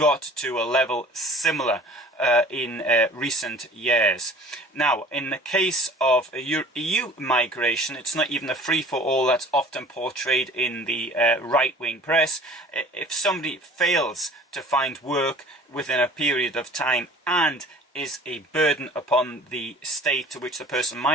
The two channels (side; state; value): both; normal; correlation 0.47